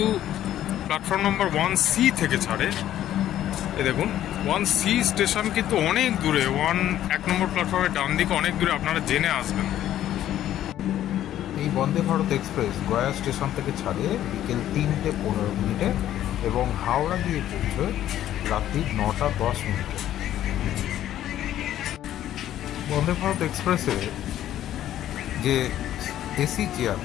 প্ল্যাটফর্ম নম্বর 1C থেকে ছাড়ে। এই দেখুন 1C স্টেশন কিন্তু অনেক দূরে, 1 নম্বর প্ল্যাটফর্মের ডান দিকে অনেক দূরে, আপনারা জেনে আসবেন। এই বন্দে ভারত এক্সপ্রেস গয়া স্টেশন থেকে ছাড়ে বিকেল 3:15 এবং হাওড়া গিয়ে পৌঁছয় রাত্রি 9:10। বন্দে ভারত এক্সপ্রেসে যে এসি চেয়ার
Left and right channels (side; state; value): right; quieter; 12.2 dB